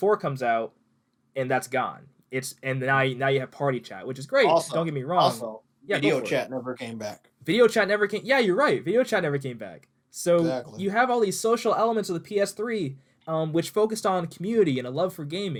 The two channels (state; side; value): identical; both; correlation 1.00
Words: comes out, and that's gone. And now you have party chat, which is great. Don't Also, get me wrong. also, Yeah, go video for it. chat never came back. Video chat never came. Yeah, you're right. Video chat never came back. So Exactly. you have all these social elements of the PS3, which focused on community and a love for